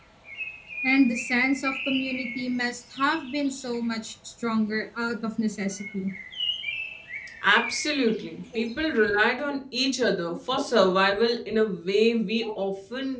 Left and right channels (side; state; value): both; identical; correlation 1.00